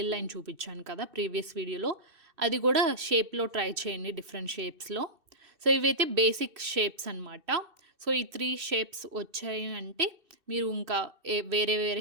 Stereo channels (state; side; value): late; left; 2.6 ms